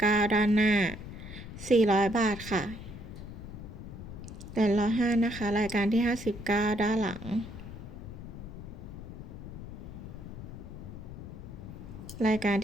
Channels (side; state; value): left; noise; rumble, 11 dB below the sound